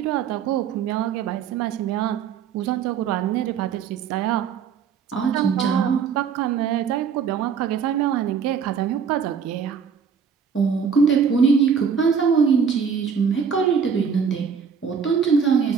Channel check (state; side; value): quieter; left; 6.6 dB